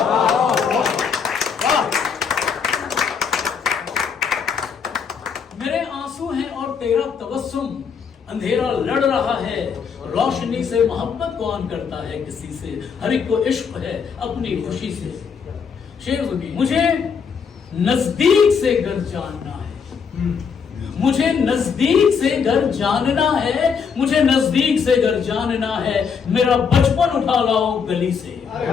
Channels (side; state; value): right; quieter; 6.3 dB